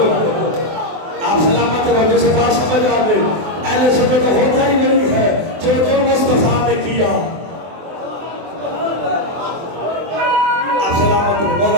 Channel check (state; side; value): late; left; 24 ms